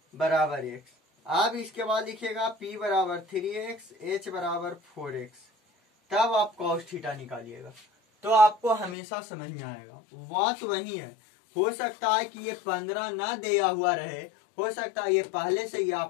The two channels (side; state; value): right; drops out; at 9.0 s